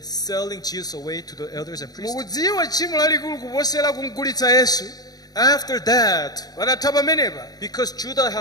selling Jesus away to the elders and priests? Mukudziwa tchimo lalikulu kuposera kumgulitsa Yesu? After that, Patatha pamenepa. because Judah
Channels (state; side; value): late; right; 0.19 ms